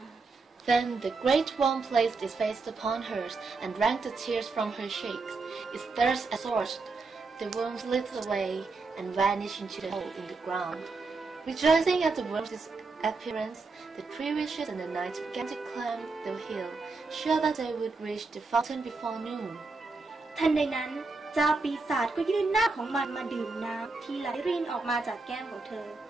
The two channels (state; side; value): quieter; left; 3.9 dB